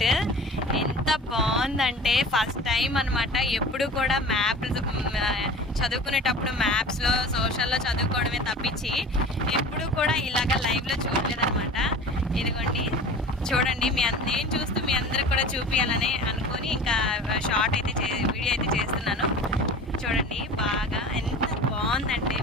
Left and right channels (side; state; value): both; normal; correlation 0.38